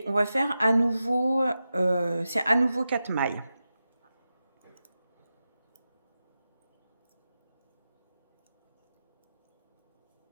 on va faire à nouveau, c'est à nouveau 4 mailles.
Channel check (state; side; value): inverted; both; correlation -0.92